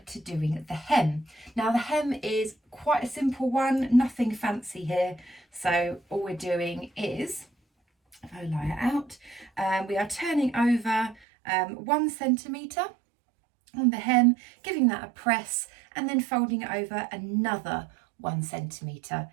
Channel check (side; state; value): left; drops out; at 11.2 s